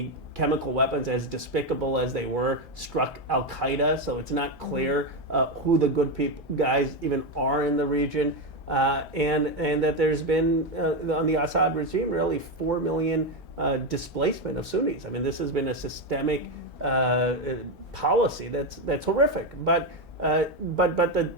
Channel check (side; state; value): both; normal; correlation 0.10